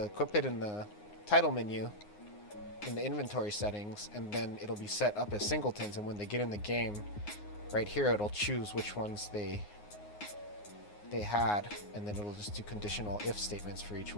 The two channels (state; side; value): late; right; 9.6 ms